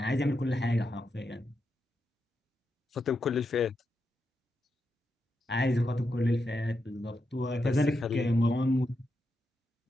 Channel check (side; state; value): both; normal; correlation 0.85